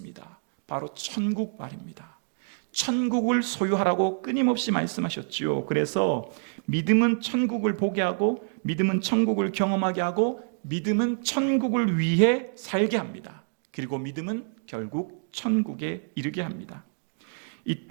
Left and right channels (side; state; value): left; silent; digital silence